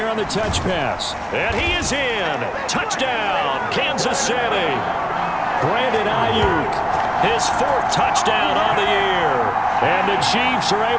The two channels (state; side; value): identical; both; correlation 1.00